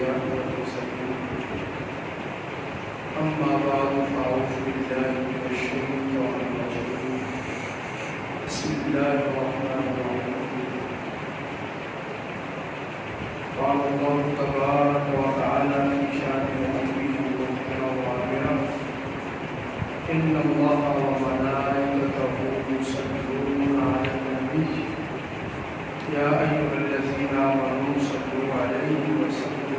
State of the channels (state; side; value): identical; both; correlation 1.00